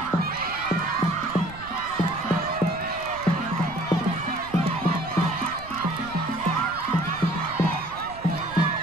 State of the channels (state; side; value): noise; right; rumble, 17 dB below the sound